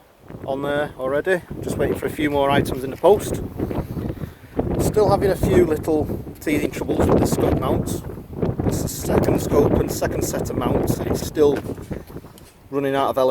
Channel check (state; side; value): identical; both; correlation 1.00